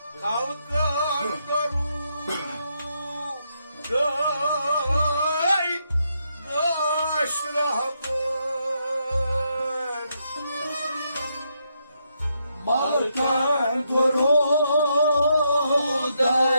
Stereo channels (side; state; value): both; inverted; correlation -0.79